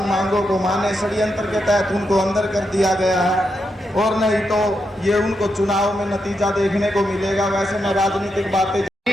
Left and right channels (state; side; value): normal; both; correlation 0.84